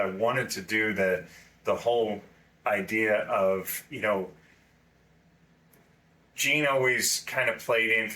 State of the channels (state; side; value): identical; both; correlation 1.00